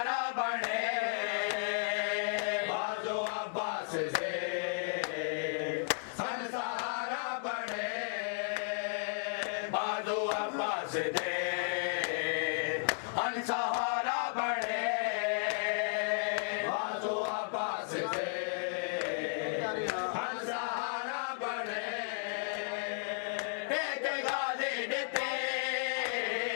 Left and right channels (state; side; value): silent; right; digital silence